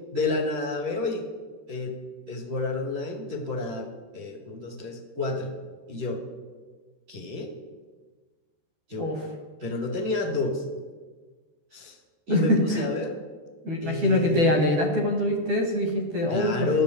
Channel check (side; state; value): left; late; 13 ms